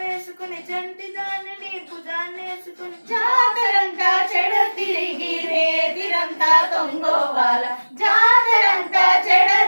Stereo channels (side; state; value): both; inverted; correlation -1.00